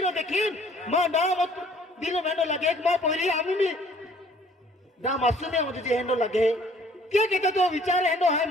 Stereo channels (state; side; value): normal; both; correlation 0.57